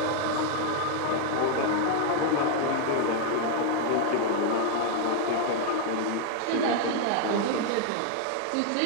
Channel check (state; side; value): different; both; correlation 0.00